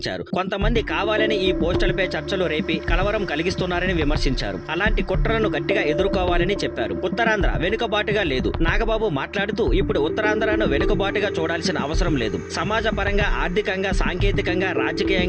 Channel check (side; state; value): both; identical; correlation 1.00